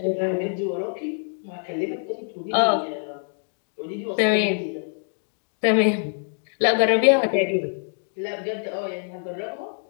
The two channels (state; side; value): silent; right; digital silence